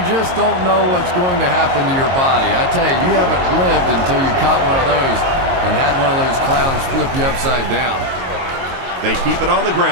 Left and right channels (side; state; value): left; late; 22 ms